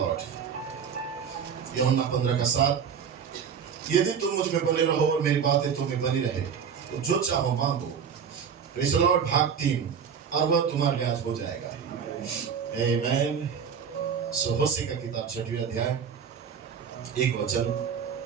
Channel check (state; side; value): quieter; left; 7.1 dB